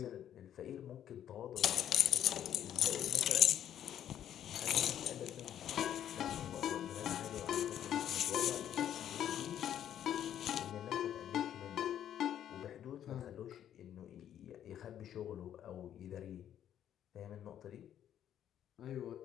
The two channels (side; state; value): right; quieter; 10.4 dB